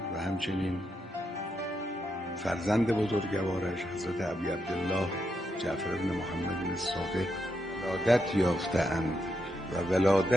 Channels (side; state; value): both; normal; correlation 0.82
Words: و همچنین فرزند بزرگوارش حضرت ابی عبدالله جعفر بن محمد الصادق ولادت یافته‌اند و